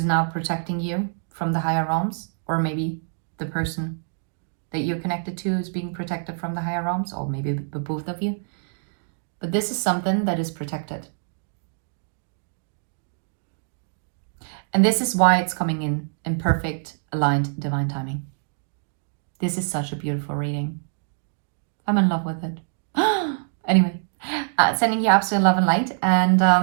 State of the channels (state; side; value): silent; left; digital silence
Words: now protecting you from the higher realms, or maybe the person that you're connected to is being protected from the higher realms, or maybe both of you. But this is something that is protected. And this is why it's coming in perfect, aligned, divine timing. This is such a beautiful reading. I'm in love with it. Anyway, sending you absolute love and light,